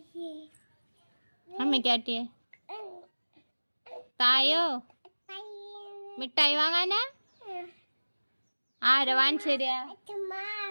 അമ്മയ്ക്കാട്ടിയേ തായോ മിഠായി വാങ്ങാനാ? ആരാ വാങ്ങിച്ചേരാ?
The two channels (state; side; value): inverted; both; correlation -1.00